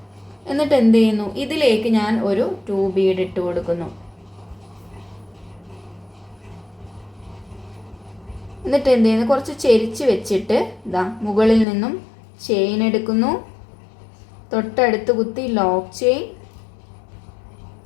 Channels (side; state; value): right; drops out; at 11.7 s